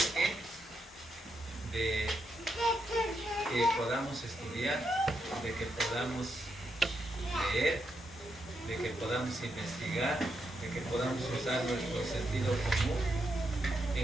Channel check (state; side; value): normal; both; correlation 0.82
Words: de que podamos estudiar, de que podamos leer, de que podamos investigar, de que podamos usar nuestro sentido común